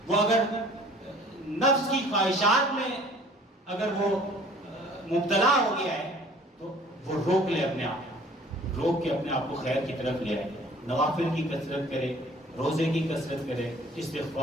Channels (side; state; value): both; normal; correlation 0.51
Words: وہ اگر نفس کی خواہشات میں اگر وہ مبتلا ہو گیا ہے تو وہ روک لے، اپنے آپ روک کے اپنے آپ کو خیر کی طرف لے آئے، نوافل کی کثرت کرے، روزے کی کثرت کرے،